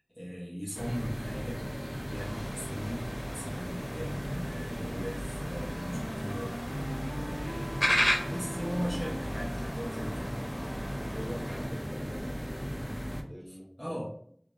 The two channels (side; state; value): both; identical; correlation 1.00